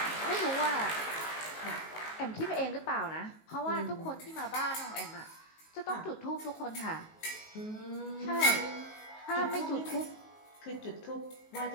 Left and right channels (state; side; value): late; right; 19 ms